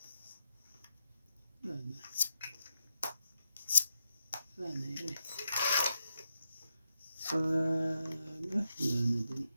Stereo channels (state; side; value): inverted; both; correlation -0.84